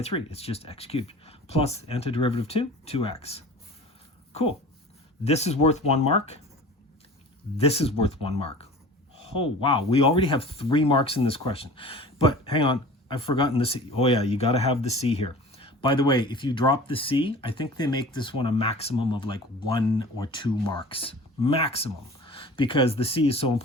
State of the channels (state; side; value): normal; both; correlation 0.41